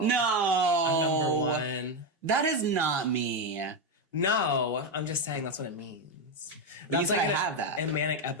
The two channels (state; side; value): normal; both; correlation 0.08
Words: No, I'm number one. That is not me. No, I'm just saying that's what it means. That's like I have that in manic